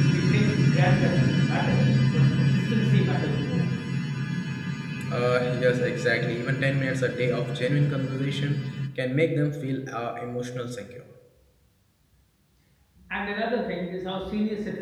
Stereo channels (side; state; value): both; identical; correlation 1.00